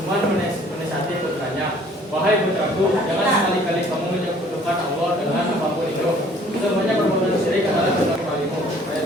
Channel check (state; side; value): normal; both; correlation 0.56